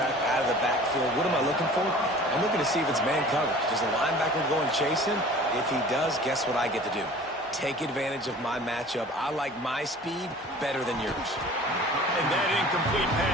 out of the backfield. What am I looking for? I'm looking to see if it's man coverage. Does the linebacker go and chase him? If he does, guess what I get to do? Take advantage of my matchup. I like my speed better than yours. And that incomplete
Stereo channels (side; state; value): both; normal; correlation 0.45